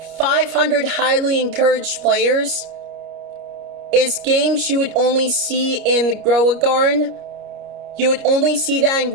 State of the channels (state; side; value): late; left; 29 ms